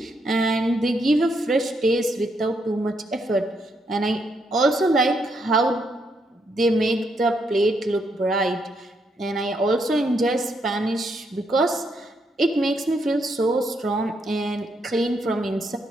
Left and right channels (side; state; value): both; normal; correlation 0.77